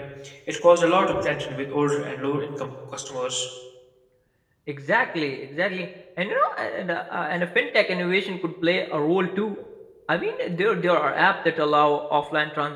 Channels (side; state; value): both; identical; correlation 1.00